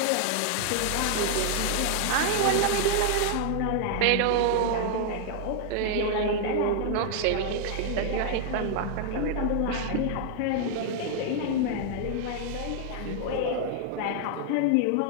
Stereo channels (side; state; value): both; different; correlation 0.00